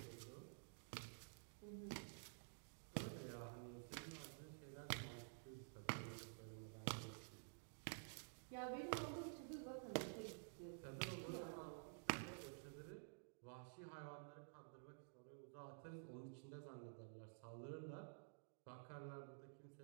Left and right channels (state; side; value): silent; left; digital silence